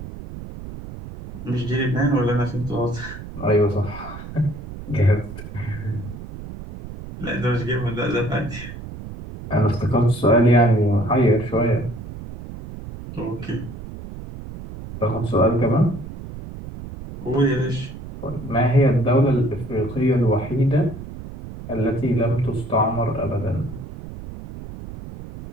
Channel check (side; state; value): right; noise; rumble, 12 dB below the sound